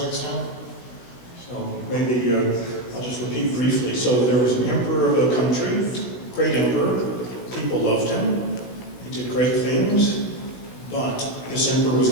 So maybe I'll just repeat briefly. So there was an emperor of a country, great emperor. People loved him. He did great things. But this emperor was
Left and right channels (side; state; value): right; late; 17 ms